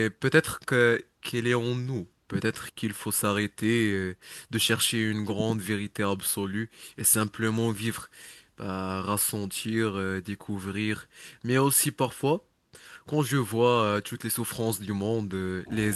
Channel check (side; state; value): both; identical; correlation 1.00